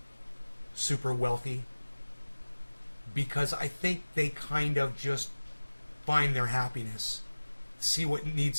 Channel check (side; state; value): both; inverted; correlation -1.00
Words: super wealthy because I think they kind of just find their happiness, see what